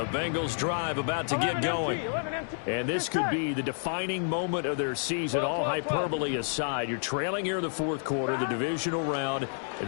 Bengals drive about to get going. And this could be the defining moment of their season, all hyperbole aside. You're trailing here in the 4th quarter, the divisional round, and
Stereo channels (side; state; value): right; silent; digital silence